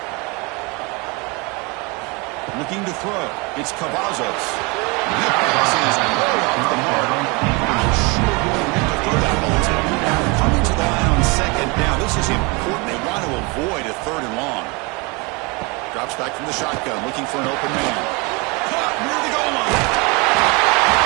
Looking to throw. It's Cavazos. That pass is way off the mark. Not sure who will get to throw that ball to. Coming to the line on second down. This is important. They want to avoid a third and long. Drops back from the shotgun, looking for an open man. Caught near the goal line.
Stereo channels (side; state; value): left; quieter; 28.4 dB